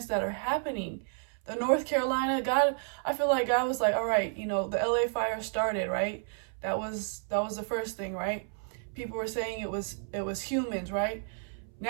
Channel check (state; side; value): silent; left; 57 dB below the other